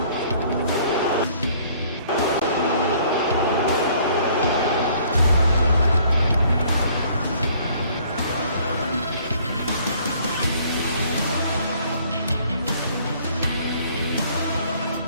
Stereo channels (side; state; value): both; inverted; correlation -0.59